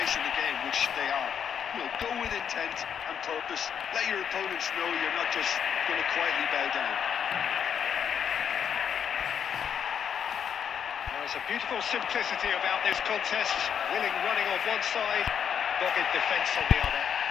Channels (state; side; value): quieter; right; 8.0 dB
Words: the game, which they are. You know, go with intent and purpose. Let your opponents know you're not just going to quietly bow down. There's a beautiful simplicity about this contest. Willing running on one side, dogged defence on the other.